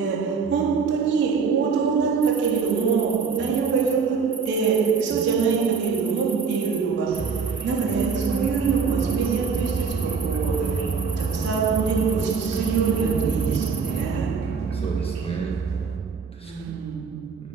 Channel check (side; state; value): left; quieter; 5.5 dB